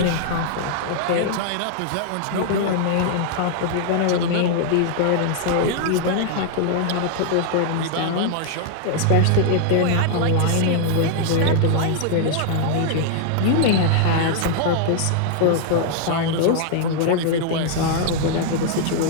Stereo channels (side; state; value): both; different; correlation -0.01